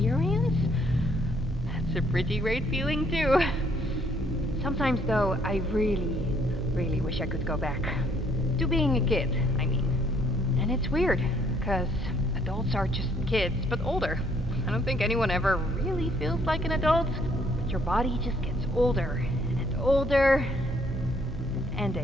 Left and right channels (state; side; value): normal; both; correlation 0.65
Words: that's a pretty great feeling too. Sometimes though, I really wish I could go back. To being a kid, I mean. And it's weird, because adults are just kids, but older. I don't think anyone ever really feels like an adult, but your body just gets older and older, and